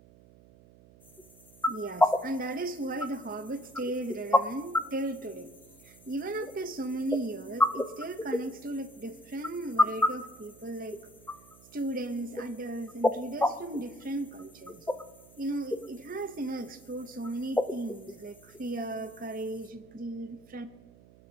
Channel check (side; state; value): right; noise; hum, 23 dB below the sound